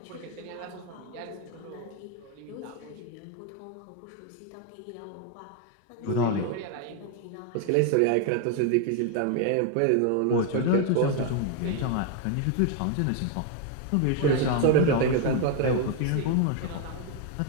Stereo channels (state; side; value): different; both; correlation 0.01